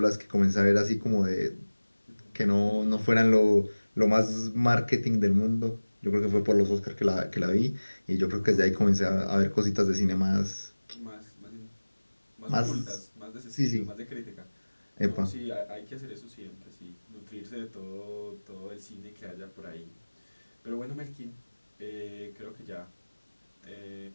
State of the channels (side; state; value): both; inverted; correlation -1.00